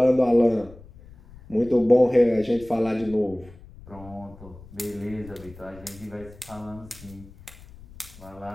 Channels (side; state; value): left; noise; rumble, 20 dB below the sound